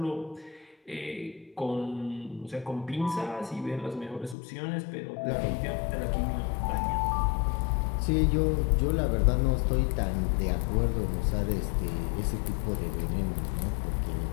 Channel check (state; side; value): drops out; right; at 4.4 s